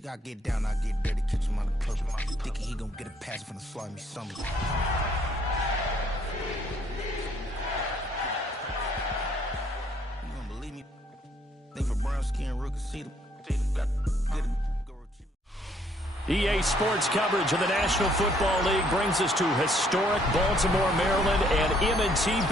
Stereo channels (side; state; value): both; normal; correlation 0.66